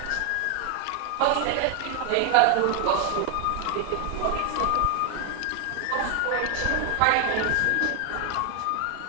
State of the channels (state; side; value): different; both; correlation 0.01